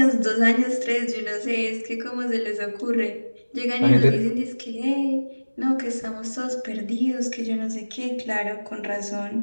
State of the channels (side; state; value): both; inverted; correlation -1.00